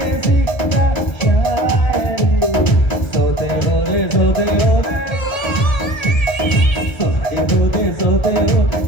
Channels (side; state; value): right; late; 1.3 ms